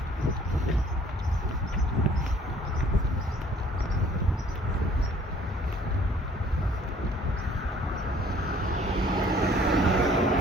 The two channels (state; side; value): normal; both; correlation 0.57